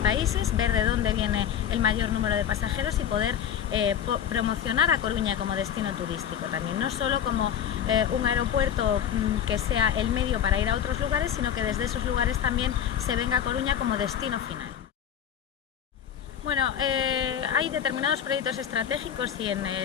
ver de dónde viene el mayor número de pasajeros y poder promocionar a Coruña como destino turístico también, no solo como un aeropuerto que sea el medio para ir a otros lugares, sino que desde esos lugares también se venga a Coruña como destino final. Bueno, hay determinados proyectos estratégicos y en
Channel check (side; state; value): right; quieter; 9.1 dB